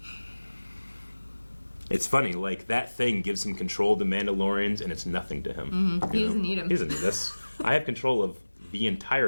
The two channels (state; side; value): inverted; both; correlation -1.00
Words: It's funny, like that thing gives him control of the Mandalorians, and it's nothing to him. He doesn't need him. He doesn't need this. I have control of the